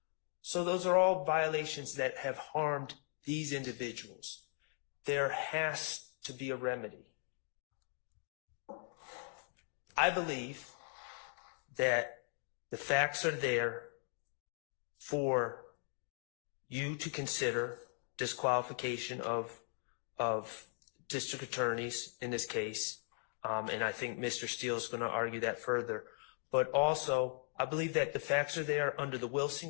So those are all violations that have harmed these individuals. There has to be a remedy. I believe that the facts are there for you to consider disqualification of district attorneys in this case. And I think Mr. Steele is going to argue that further. But also, I believe that the facts are there under the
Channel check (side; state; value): right; silent; 52 dB below the other